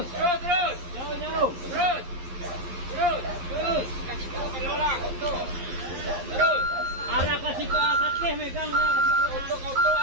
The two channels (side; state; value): left; late; 11 ms